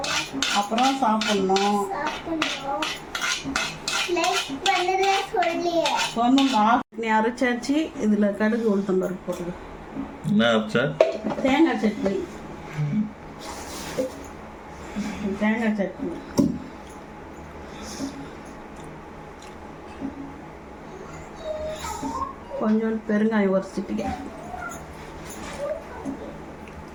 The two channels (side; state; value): both; identical; correlation 1.00